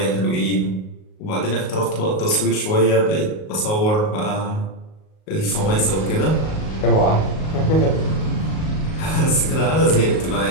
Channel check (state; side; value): late; right; 38 ms